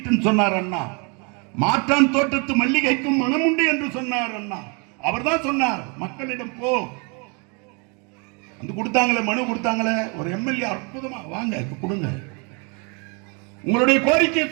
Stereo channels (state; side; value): quieter; left; 33.8 dB